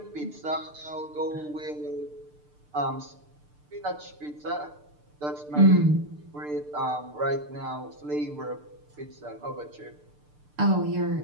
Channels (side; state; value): left; late; 6.7 ms